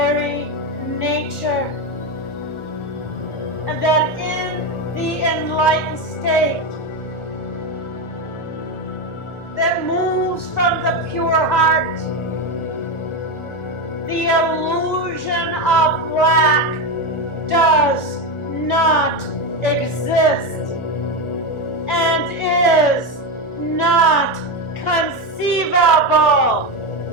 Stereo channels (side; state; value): right; late; 1.4 ms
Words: nature, and that in the enlightened state that moves from the pure heart, the illusion of lack does not exist and is not conceivable.